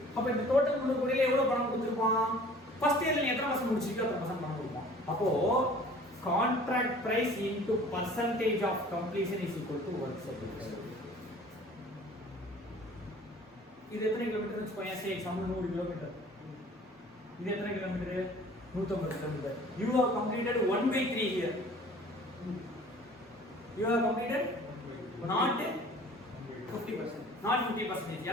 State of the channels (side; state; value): both; normal; correlation 0.49